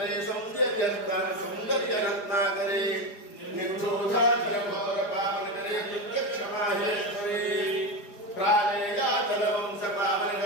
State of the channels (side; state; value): right; late; 4.9 ms